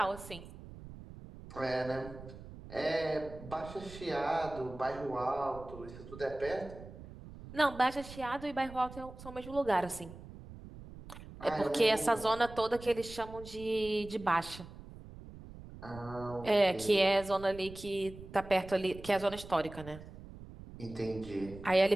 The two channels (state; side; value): noise; right; rumble, 15 dB below the sound